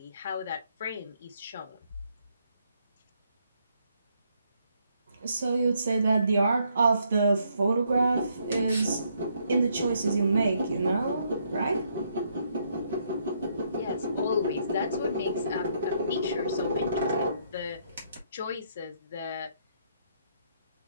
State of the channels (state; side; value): inverted; both; correlation -0.72